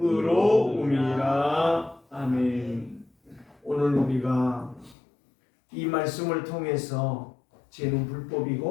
아멘. 오늘 우리가 이 말씀을 통해서 죄는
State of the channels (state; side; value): drops out; right; at 5.0 s